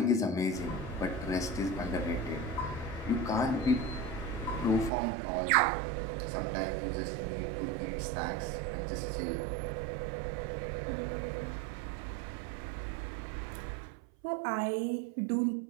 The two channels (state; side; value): drops out; left; at 4.9 s